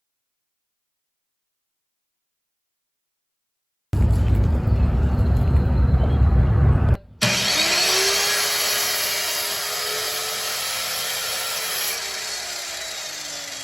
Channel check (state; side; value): identical; both; correlation 1.00